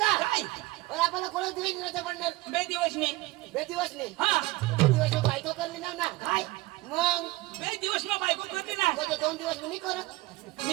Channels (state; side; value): quieter; left; 20.3 dB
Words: काय अरे आपल्याला कोण दिवस नव्हतं पडणार बे दिवस नाही बे दिवस नाही हा दिवस बायको करली ना ना काय मग बे दिवस में बायको करते ना म्हणजे 2 दिवस मी करत